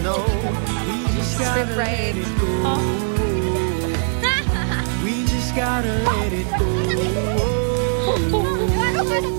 know. We just gotta Script right. let it go. We just gotta let it go.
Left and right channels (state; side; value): silent; left; 65 dB below the other